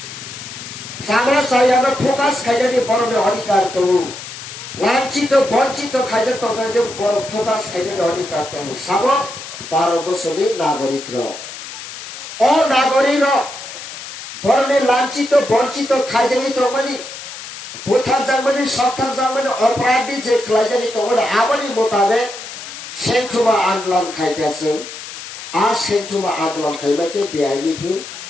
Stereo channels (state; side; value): noise; left; hiss, 11 dB below the sound